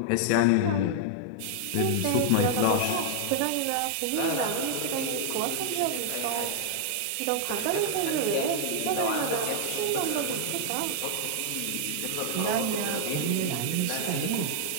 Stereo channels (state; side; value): different; both; correlation 0.00